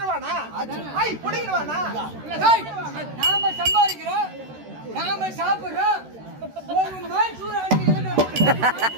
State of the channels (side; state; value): left; late; 13 ms